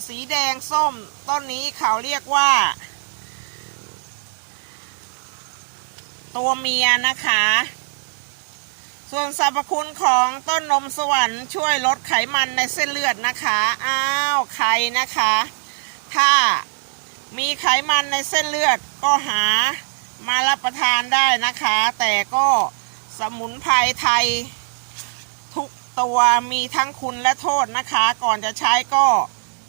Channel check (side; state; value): left; silent; 63 dB below the other